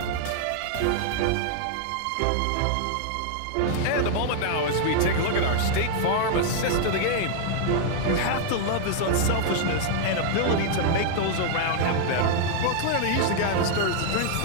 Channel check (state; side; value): different; both; correlation 0.00